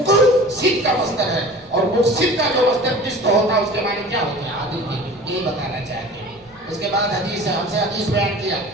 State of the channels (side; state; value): right; noise; rumble, 30 dB below the sound